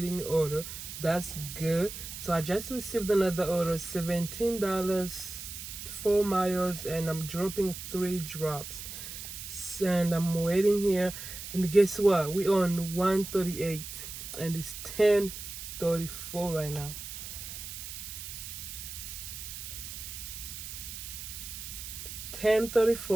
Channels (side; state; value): right; noise; hiss, 9 dB below the sound